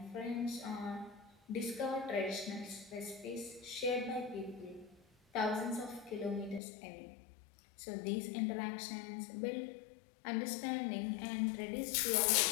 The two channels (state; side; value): drops out; right; at 6.6 s